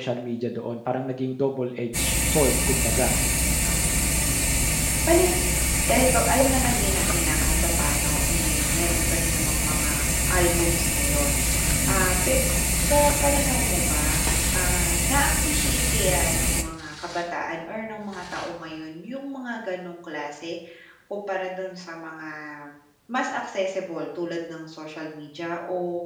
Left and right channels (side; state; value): both; identical; correlation 1.00